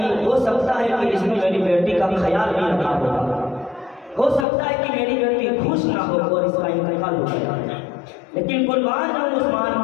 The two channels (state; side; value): drops out; right; at 4.5 s